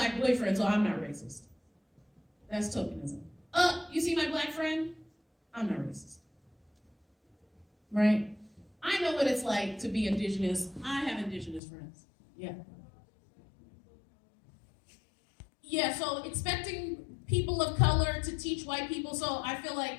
boyfriend, so I'm not racist. That's tokenism. You see my black friend? I'm not racist. Right? I know what it's like to be indigenous. I have indigenous friends. Yeah. Yeah, so expecting people of color to teach white people. So I feel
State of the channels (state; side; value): drops out; right; at 11.6 s